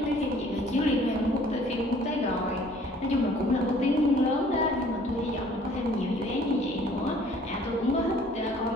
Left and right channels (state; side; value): normal; both; correlation 0.55